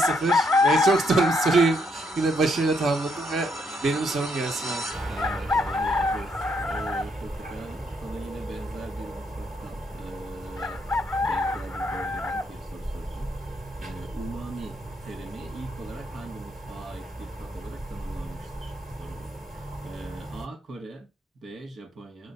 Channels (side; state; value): both; normal; correlation 0.74